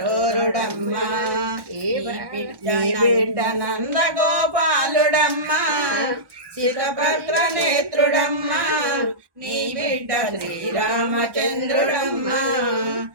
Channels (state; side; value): late; left; 1.1 ms